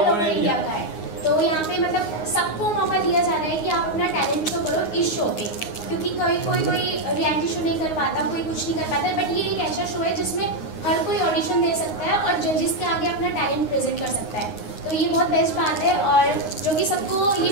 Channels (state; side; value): late; right; 9.6 ms